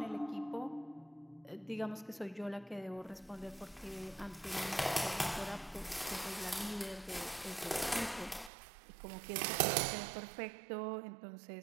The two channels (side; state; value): left; drops out; at 8.5 s